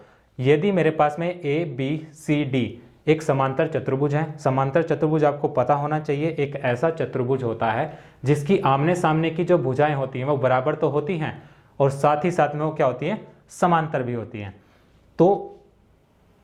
यदि मेरे पास में ए बी सी डी एक समांतर चतुर्भुज है, समांतर चतुर्भुज आपको पता होना चाहिए एक ऐसा चतुर्भुज होता है जिसकी आमने सामने की जो भुजाएं होती हैं वो बराबर तो होती हैं और साथ ही साथ में वो क्या होती हैं, समांतर भी होती हैं। तो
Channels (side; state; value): both; identical; correlation 1.00